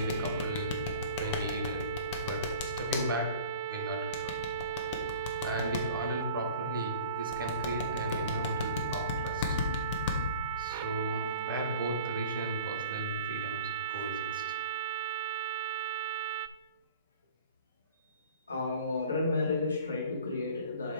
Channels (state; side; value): inverted; both; correlation -0.44